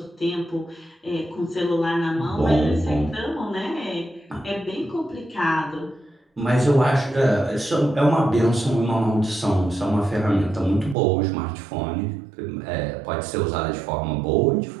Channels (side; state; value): left; drops out; at 11.0 s